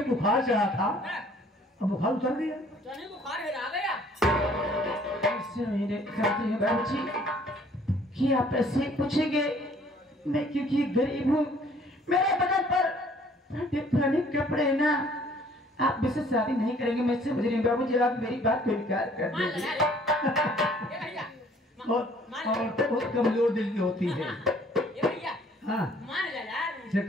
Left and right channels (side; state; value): both; normal; correlation 0.58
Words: बुखार चढ़ा था, अब बुखार उतर गया। बुखार आ गया। मेरे कहते हैं बाबूजी कि आप ऐसे पूछेंगे, मैं क्योंकि गरीब हूँ, मेरे बदन पर पुराने कपड़े हैं ना, आप मुझसे शादी नहीं करेंगे। मैं समझ रही हूँ बाबूजी, आप मेरी बात को इनकार कर दीजिए। और बहुत कमजोर दिल की होती है। हाँ से